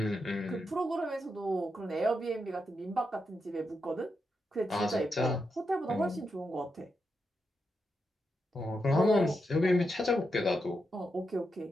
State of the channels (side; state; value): both; normal; correlation 0.85